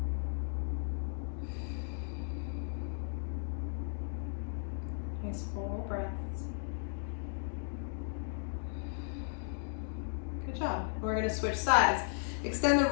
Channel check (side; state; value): right; silent; digital silence